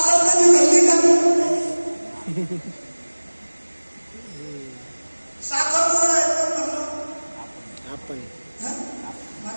कधी घडली का? साखर गोड आहे कोण म्हणलं? आपण.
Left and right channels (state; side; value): inverted; both; correlation -1.00